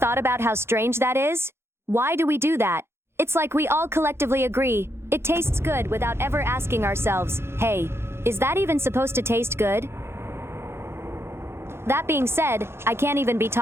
about how strange that is? Why do we do that? It's like we all collectively agree. It tastes good without ever asking ourselves, hey, is that even supposed to taste good? That being said, I can't even be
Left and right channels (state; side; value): late; left; 0.12 ms